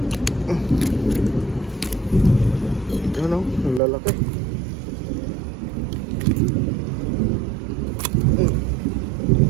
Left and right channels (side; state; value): left; drops out; at 3.8 s